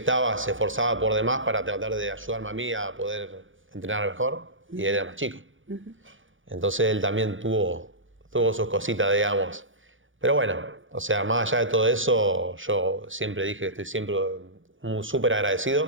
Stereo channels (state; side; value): late; left; 0.57 ms